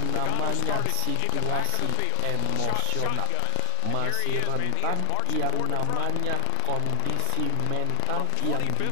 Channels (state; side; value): different; both; correlation 0.00